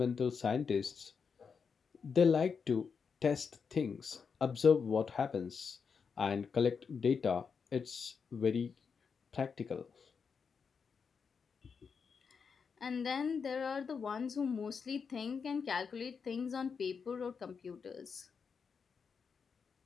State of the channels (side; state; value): right; quieter; 5.9 dB